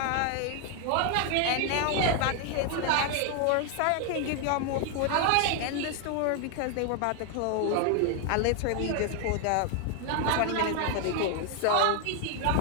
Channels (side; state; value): both; different; correlation 0.00